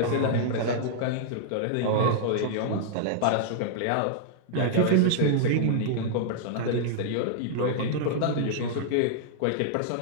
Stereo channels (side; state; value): both; different; correlation -0.01